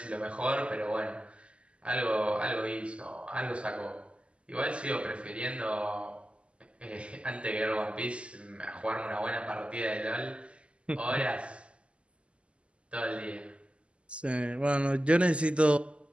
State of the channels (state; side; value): late; left; 0.056 ms